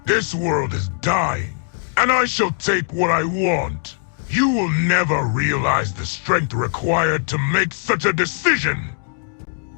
This world is dying, and I shall take what I want. You will never realize the strength required to make such a decision.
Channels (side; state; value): right; silent; digital silence